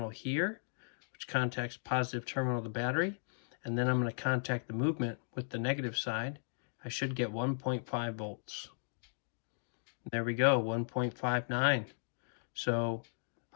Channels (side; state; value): right; silent; digital silence